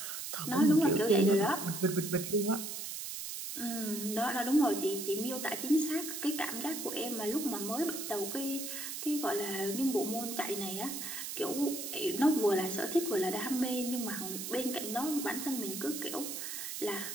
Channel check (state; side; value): noise; right; hiss, 6 dB below the sound